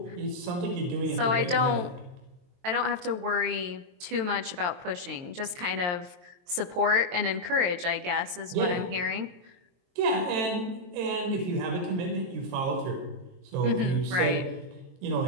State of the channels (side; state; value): left; late; 23 ms